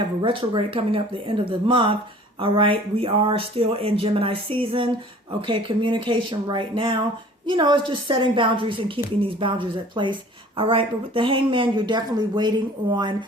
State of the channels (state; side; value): normal; both; correlation 0.49